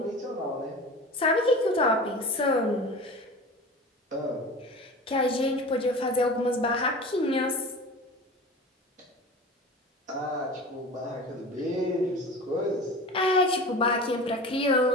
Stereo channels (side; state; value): both; normal; correlation 0.35